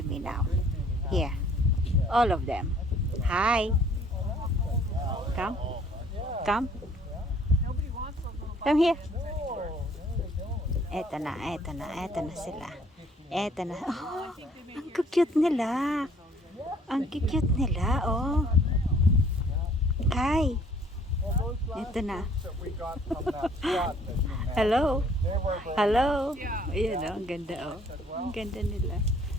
me now. Here. All of them. Hi. Come. Come. Come here. Eto na, eto na, eto na sila. Eto na. Oh, ang cute nila. Ang cute nila, oh. Hi. Eto na. Hello. Hello. Ayan, oh, ang ganda, oh. Ang ganda nila.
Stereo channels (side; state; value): both; normal; correlation 0.59